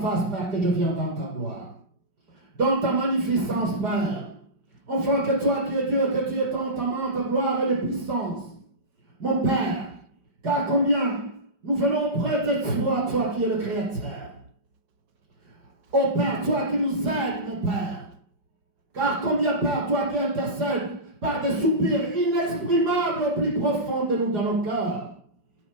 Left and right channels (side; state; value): left; late; 5.3 ms